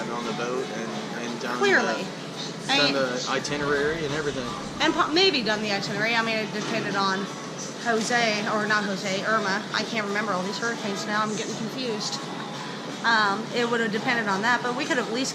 on the boat and done Clearly. the itinerary and everything. And maybe done the itinerary. I mean, it depended on Irma. I can't remember all these hurricanes now. I'm getting confused. It would have depended on that, but we could have at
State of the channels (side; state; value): both; identical; correlation 1.00